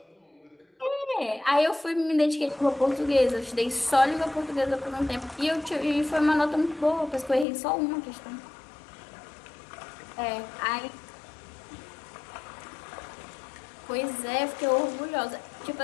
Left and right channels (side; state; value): right; drops out; at 7.5 s